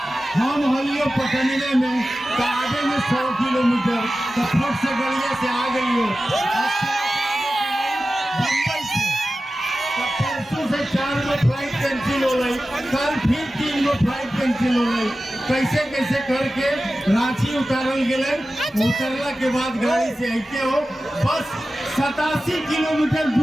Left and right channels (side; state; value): both; normal; correlation 0.94